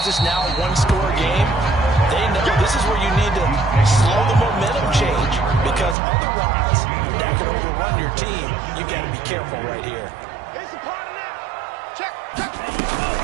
it's now a one-score game, they know this is where you need to slow the momentum change, because otherwise that could overrun your team. You got to be careful right here.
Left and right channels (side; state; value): left; drops out; at 6.0 s